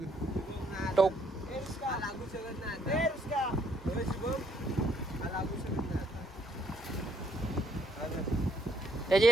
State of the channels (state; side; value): normal; both; correlation 0.68